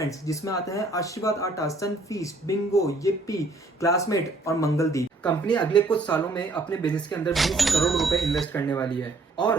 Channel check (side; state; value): left; quieter; 3.2 dB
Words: जिसमें आते हैं आशीर्वाद आटा, सनफीस्ट, बिंगो, येप्पी, क्लासमेट और मंगलदीप। कंपनी अगले कुछ सालों में अपने बिजनेस के अंदर 20 करोड़ रुपए इन्वेस्ट करने वाली है